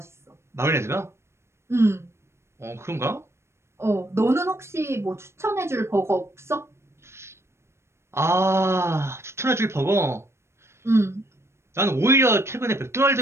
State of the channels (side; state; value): left; late; 0.13 ms